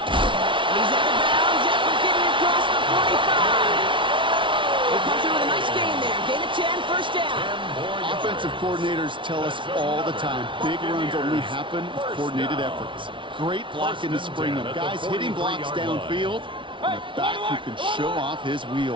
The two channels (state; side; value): late; left; 0.24 ms